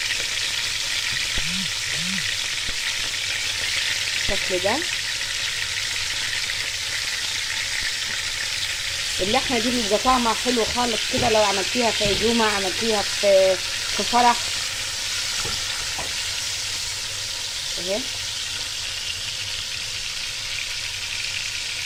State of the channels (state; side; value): identical; both; correlation 1.00